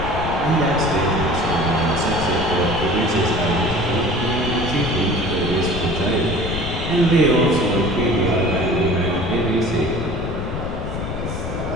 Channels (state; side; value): noise; left; rumble, 5 dB below the sound